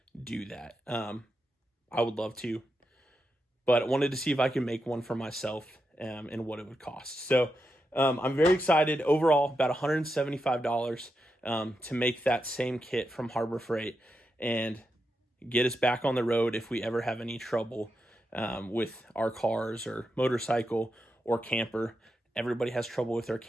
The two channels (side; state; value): both; normal; correlation 0.86